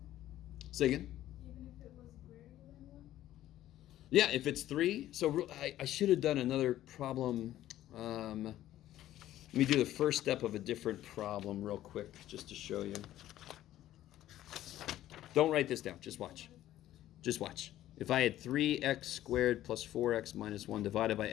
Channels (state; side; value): quieter; right; 13.5 dB